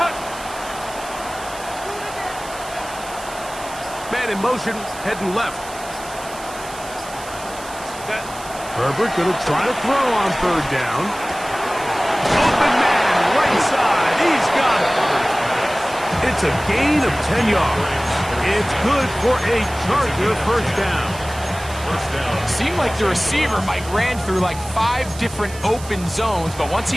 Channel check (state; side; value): noise; right; hiss, 15 dB below the sound